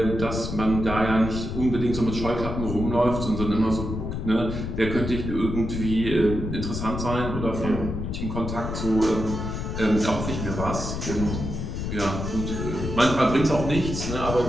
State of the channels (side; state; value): left; noise; rumble, 4 dB below the sound